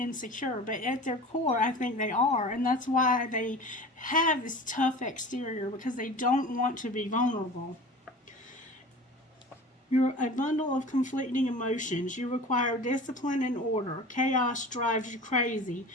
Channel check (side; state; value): both; normal; correlation 0.37